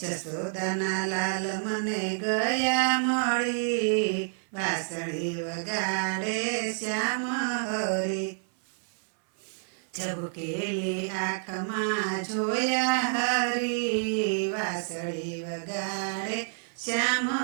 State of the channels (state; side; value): silent; left; 57 dB below the other